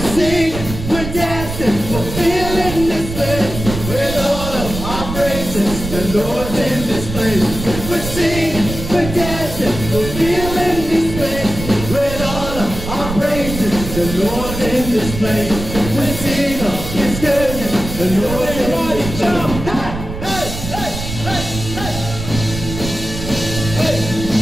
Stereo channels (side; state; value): right; noise; rumble, 7 dB below the sound